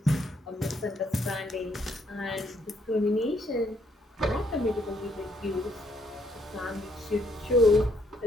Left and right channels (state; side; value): normal; both; correlation 0.70